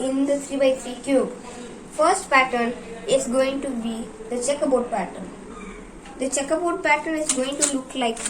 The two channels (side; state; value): both; identical; correlation 1.00